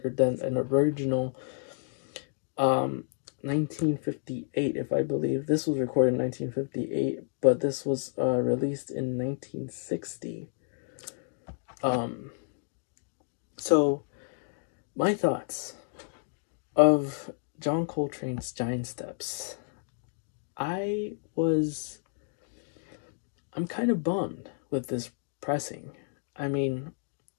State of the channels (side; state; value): right; silent; digital silence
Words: than an original 1958, if I believe. This was recorded in 1958, but this was released in 1960. So my thoughts of John Coltrane's Giant Steps. I'm kind of bummed with this pressing. I mean,